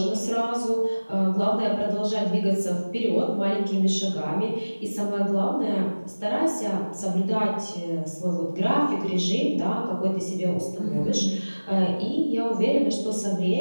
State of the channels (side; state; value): both; inverted; correlation -1.00